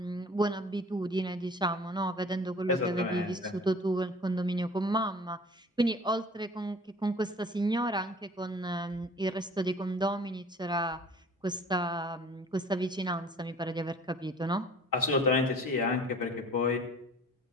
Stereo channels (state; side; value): normal; both; correlation 0.48